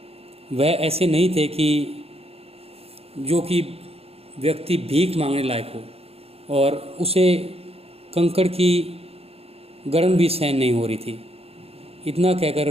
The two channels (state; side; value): late; left; 0.29 ms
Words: वह ऐसे नहीं थे कि जो कि व्यक्ति भीख मांगने लायक हो और उसे कंकड़ की गर्म भी सहन नहीं हो रही थी। इतना कहकर